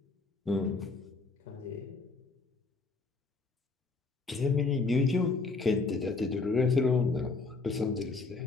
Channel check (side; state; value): right; quieter; 3.9 dB